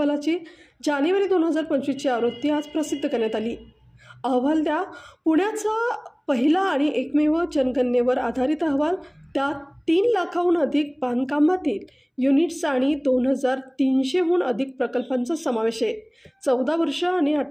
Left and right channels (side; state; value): both; identical; correlation 1.00